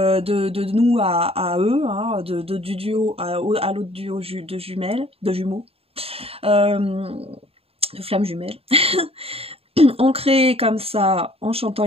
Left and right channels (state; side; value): late; left; 0.28 ms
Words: nous à eux, hein, du duo à l'autre duo de jumeaux, de flammes jumelles. On crée comme ça, en chantant